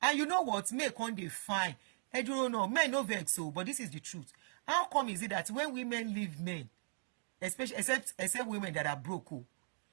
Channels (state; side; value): silent; left; digital silence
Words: you know what? Make on the fine. I don't know. Men no vex so, but this is the truth. How come is it that when women leave men, especially except women that are broke,